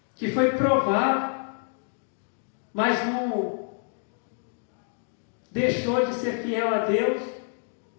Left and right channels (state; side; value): silent; right; 60 dB below the other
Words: que foi provado, mas não deixou de ser fiel a Deus,